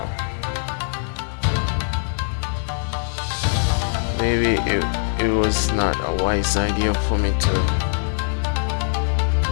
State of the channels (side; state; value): right; silent; 64 dB below the other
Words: maybe it was not a wise idea for me to